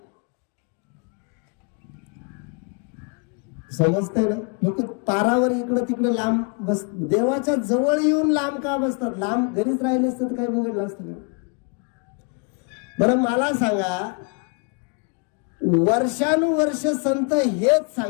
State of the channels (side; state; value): right; quieter; 36.4 dB